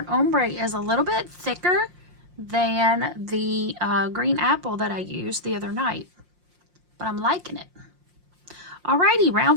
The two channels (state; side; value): late; left; 5.6 ms